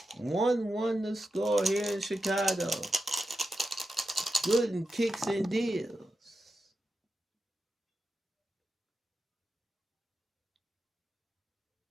1-1 the score here in Chicago. Gooden kicks and deals.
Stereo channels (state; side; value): normal; both; correlation 0.90